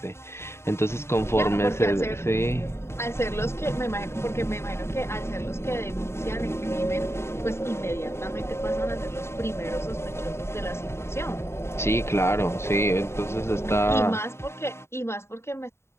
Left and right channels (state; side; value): late; right; 0.13 ms